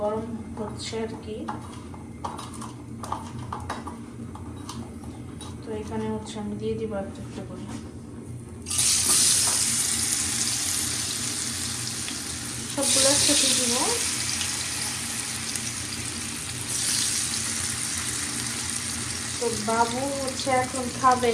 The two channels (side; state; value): both; identical; correlation 1.00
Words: গরম হচ্ছে আর কি। তো এখানে হচ্ছে আমি দিয়ে দিব একটা একটা করে। সবগুলো একসাথে দিব। তো বাবু হচ্ছে এখন